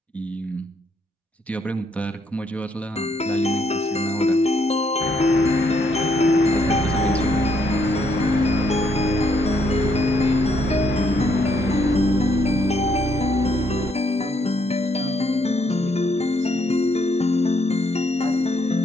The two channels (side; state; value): both; normal; correlation 0.72